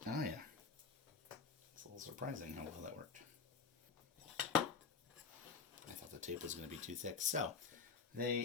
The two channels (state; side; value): quieter; right; 5.7 dB